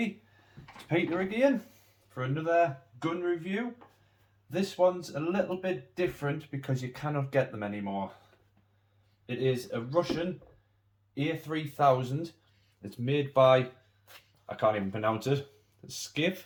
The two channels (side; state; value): both; identical; correlation 1.00